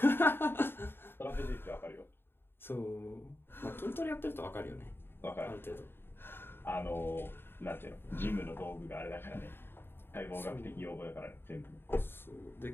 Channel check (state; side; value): late; right; 0.11 ms